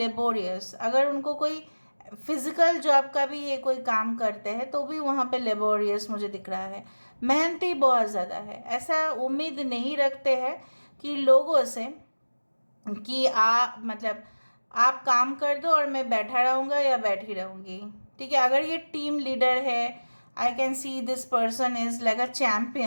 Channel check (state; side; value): inverted; both; correlation -1.00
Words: अगर उनको कोई फिज़िकल जॉब का भी ये कोई काम करते हैं तो भी वहाँ पे लेबोरियस मुझे दिख रहा है। मेहनती बहुत ज़्यादा है। ऐसा उम्मीद नहीं रखते हैं कि लोगों से कि मतलब आप काम कर दो और मैं बैठा रहूँगा या बैठी रहूँगी, ठीक है। अगर ये टीम लीडर है, I can see this person is like a